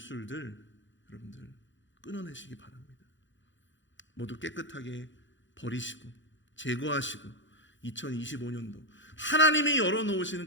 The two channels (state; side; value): late; right; 0.55 ms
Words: 여러분들 끊어내시기 바랍니다. 모두 깨끗하게 버리시고 제거하시고 2025년도 하나님이 열어놓으시는